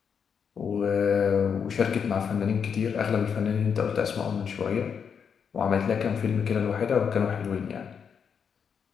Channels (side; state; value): right; quieter; 6.9 dB